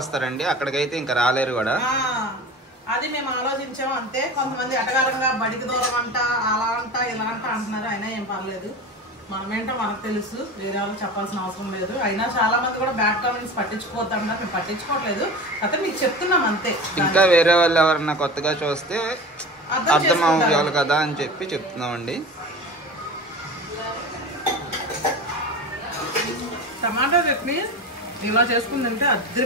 అక్కడికైతే ఇంకా రాలేరు కూడా. అది మేము ఆలోచించాము అంతే. కొంతమంది అటగారంగా బడికి దూరం అంట, అలా అంట, ఇలా అంట అంటున్నారు. అయినా ఏం పర్లేదు, మనమేంటో మనకు తెలుసు, వేరే వాళ్ళు చెప్పాల్సిన అవసరం లేదు. అయినా చాలా మంది కూడా బ్యాడ్ కామెంట్స్ పట్టించుకోవద్దన్నారు, మేము పట్టించుకోవట్లేదు. అయితే మీకు చెప్తున్నాం అంతే. ఇంకా వేరే వాళ్ళు ఎవరన్నా కొత్తగా చూస్తే అర్థం అవ్వాలి కదా అని చెప్పి చెప్తున్నామండి. టమాటా చట్నీ ఇలా చేసుకుందంటే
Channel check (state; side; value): normal; both; correlation 0.32